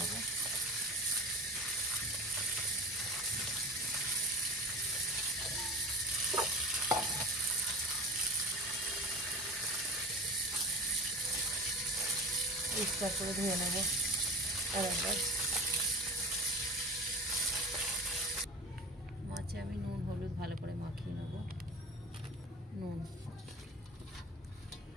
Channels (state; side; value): normal; both; correlation 0.34